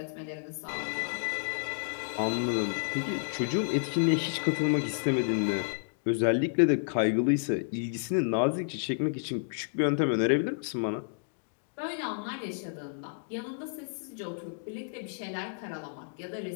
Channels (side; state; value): right; silent; digital silence